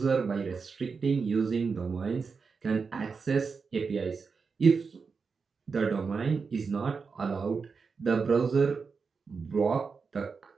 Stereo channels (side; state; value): left; quieter; 5.1 dB